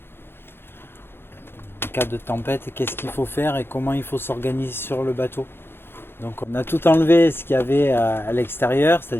cas de tempête, qu'est-ce qu'il faut faire et comment il faut s'organiser sur le bateau. Donc on a tout enlevé ce qu'il y avait à l'extérieur,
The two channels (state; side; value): late; right; 0.11 ms